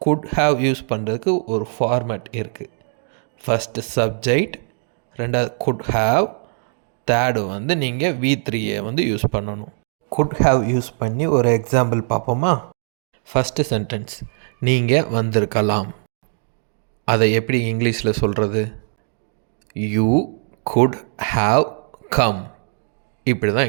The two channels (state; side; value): silent; left; 56 dB below the other